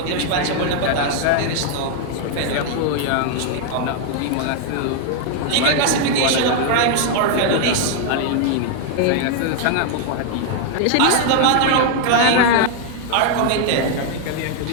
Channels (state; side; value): different; both; correlation 0.00